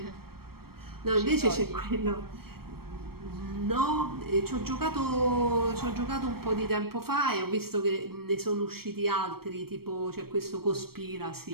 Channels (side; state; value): left; late; 0.94 ms